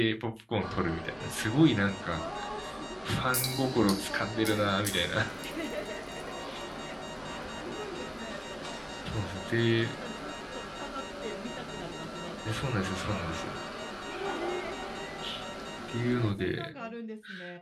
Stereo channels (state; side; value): identical; both; correlation 1.00